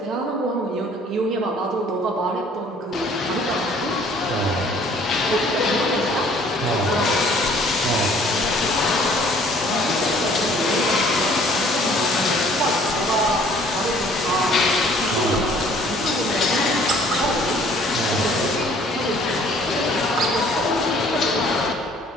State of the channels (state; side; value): normal; both; correlation 0.56